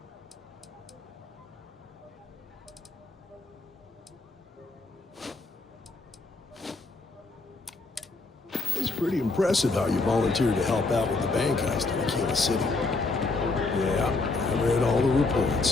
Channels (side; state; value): right; quieter; 3.6 dB